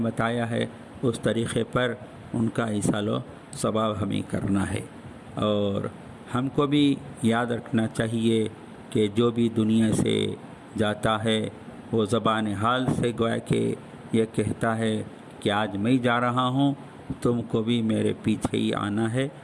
ہے اس طریقے پر ان کا ایصال و ثواب ہمیں کرنا ہے۔ اور ہم کو بھی یاد رکھنا چاہیے کہ جو بھی دنیا سے جاتا ہے وہ زبان حال سے گویا کہ یہ کہتا ہے کہ آج میں جا رہا ہوں، تم کو بھی میرے پیچھے ہی آنا ہے۔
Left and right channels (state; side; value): identical; both; correlation 1.00